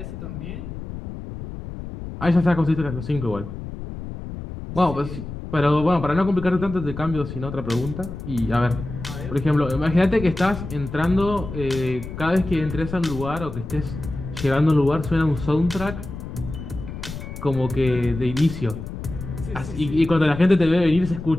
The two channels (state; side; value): noise; left; rumble, 9 dB below the sound